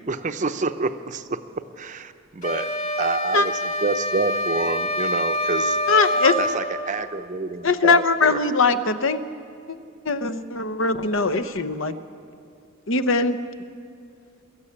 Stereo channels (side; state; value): both; normal; correlation -0.12